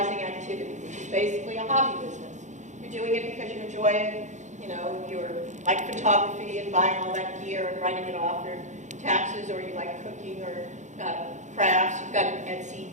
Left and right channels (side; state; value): left; late; 0.35 ms